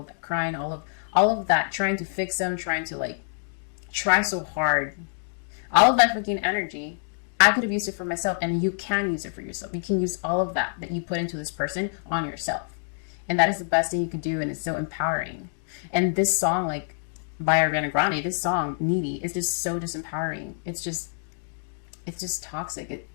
of that crying, all of that trying to fix them, trying to, like, try so hard, all of that freaking energy, I could have used it for myself, and you can use it for yourself. You can use all of that you put into this person on yourself. And that is the best thing you can do, and it's so empowering. And this song, like, by Ariana Grande, this song, Needy, is just so disempowering. It's just toxic.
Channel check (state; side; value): silent; right; digital silence